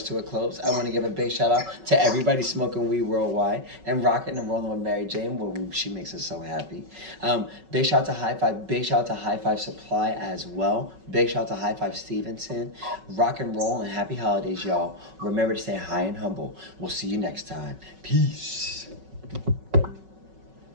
to a close. I want to give a big shout out to everybody smoking weed worldwide and rocking and rolling with Mary Jane, she makes us so happy. Big shout out to HIGH-5. Big shout out to HIGH-5 Supply as well. Big shout out to HIGH-5 Stevenson. Rock and roll and happy holidays, y'all. Remember to stay high and humble. We'll see you next time. Peace.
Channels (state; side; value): late; left; 5.3 ms